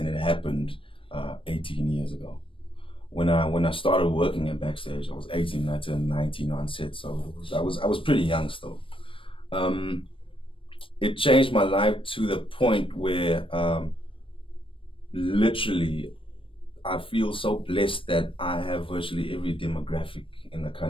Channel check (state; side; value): late; right; 0.25 ms